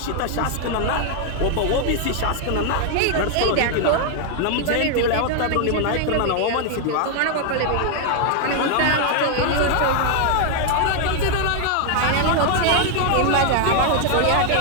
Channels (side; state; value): both; different; correlation 0.00